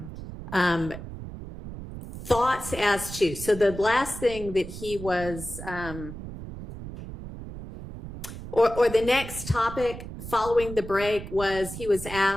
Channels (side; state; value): right; noise; rumble, 11 dB below the sound